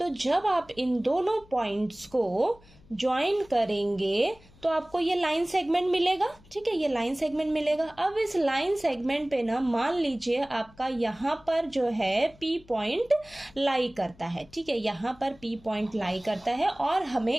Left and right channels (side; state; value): left; noise; hum, 26 dB below the sound